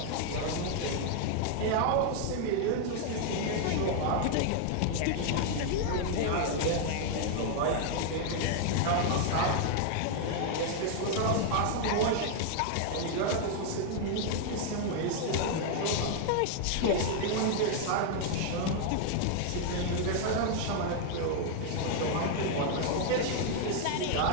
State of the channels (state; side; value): different; both; correlation 0.00